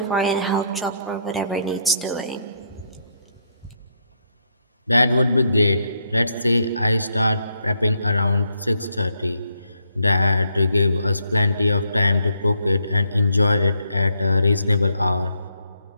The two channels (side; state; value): both; inverted; correlation -0.75